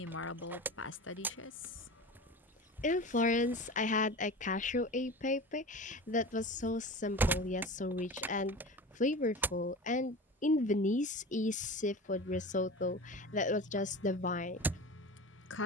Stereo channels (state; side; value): normal; both; correlation 0.32